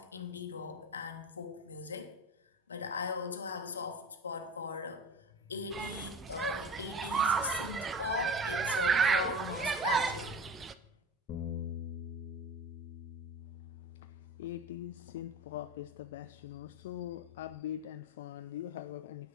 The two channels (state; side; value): normal; both; correlation 0.33